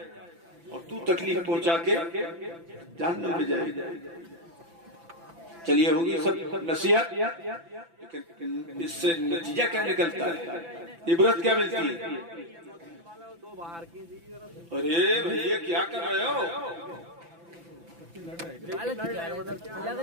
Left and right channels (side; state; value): left; late; 5.9 ms